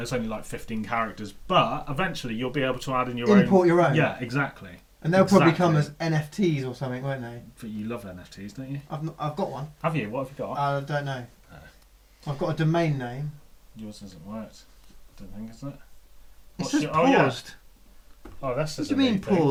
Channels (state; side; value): identical; both; correlation 1.00